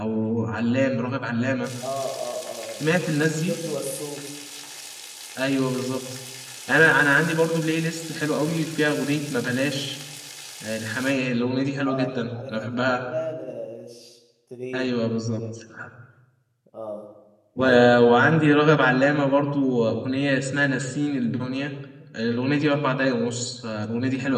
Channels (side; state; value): both; identical; correlation 1.00